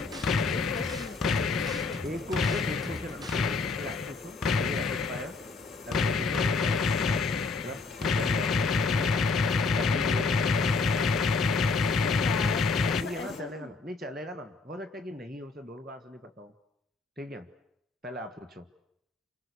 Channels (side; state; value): right; quieter; 4.3 dB